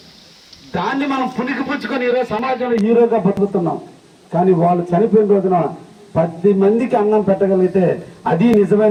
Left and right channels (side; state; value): both; identical; correlation 1.00